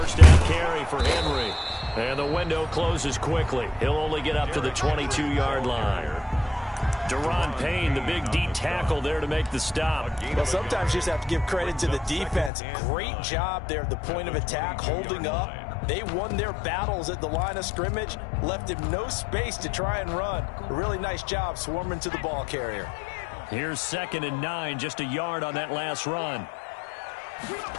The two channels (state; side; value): drops out; right; at 12.5 s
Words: down carry for Henry. And the window closes quickly. He'll only get up to the 22-yard line. Deron Payne, the big D tackle there to make the stop. Well, sometimes you just have to give credit to the defense. Great job there at the point of attack, holding up. They won their battles at the line of scrimmage, left him no space to try and run. A really nice job swarming to the ball carrier. Here's 2nd and 9, just a yard on that last run.